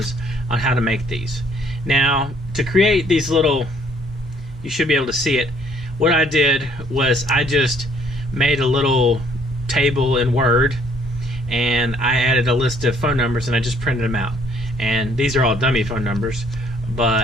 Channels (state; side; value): normal; both; correlation 0.63